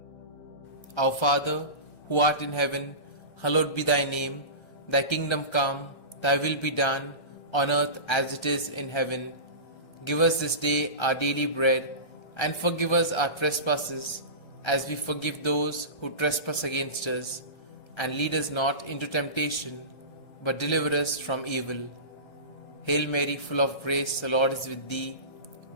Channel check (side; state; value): right; late; 1.3 ms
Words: Our Father, who art in heaven, hallowed be thy name. Thy kingdom come, thy will be done, on earth as it is in heaven. Give us this day our daily bread, and forgive us our trespasses, as we forgive those who trespass against us. And lead us not into temptation, but deliver us from evil. Hail Mary, full of grace, the Lord is with thee.